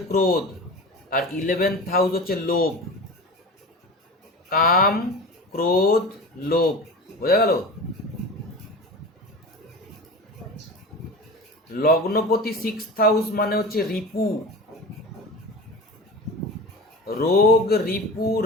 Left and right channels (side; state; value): both; normal; correlation 0.32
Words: ক্রোধ, আর 11th হাউস হচ্ছে লোভ। কাম, ক্রোধ, লোভ, বোঝা গেল? লগ্নপতি সিক্সথ হাউস মানে হচ্ছে রিপু, রোগ, রিপু,